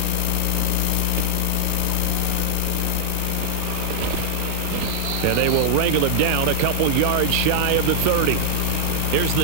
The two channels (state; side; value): different; both; correlation -0.01